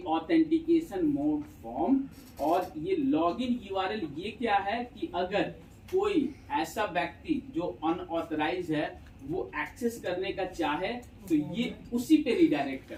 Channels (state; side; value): identical; both; correlation 1.00